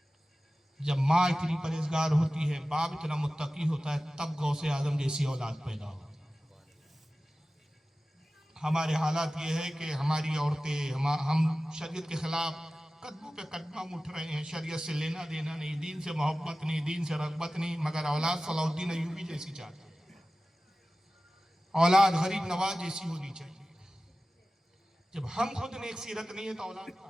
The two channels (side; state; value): both; normal; correlation 0.96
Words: جب ماں اتنی پرہیزگار ہوتی ہے, باپ اتنا متقی ہوتا ہے, تب غوث اعظم جیسی اولاد پیدا ہوتی ہے. ہمارے حالات یہ ہے کہ ہماری عورتیں ہم شریعت کے خلاف قدموں پہ قدم اٹھ رہے ہیں، شریعت سے لینا دینا نہیں، دین سے محبت نہیں، دین سے رغبت نہیں، مگر اولاد صلاح الدین ایوبی جیسی چاہتے ہیں، اولاد غریب نواز جیسی ہونی چاہیے۔ جب ہم خود نیک سیرت نہیں ہے تو اولاد